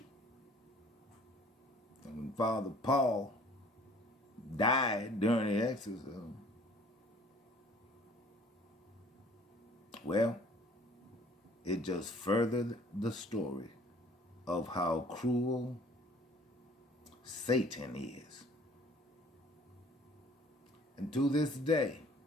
And when Father Paul died during the exorcism, well, it just furthered the story of how cruel Satan is. And to this day,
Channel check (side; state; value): both; normal; correlation 0.53